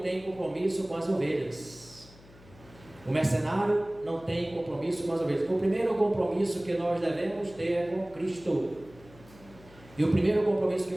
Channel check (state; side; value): noise; left; hum, 23 dB below the sound